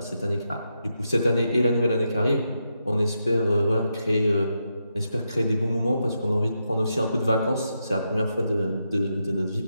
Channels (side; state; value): both; inverted; correlation -0.84